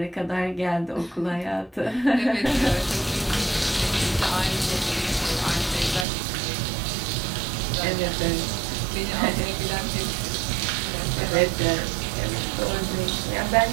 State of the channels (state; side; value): drops out; left; at 6.1 s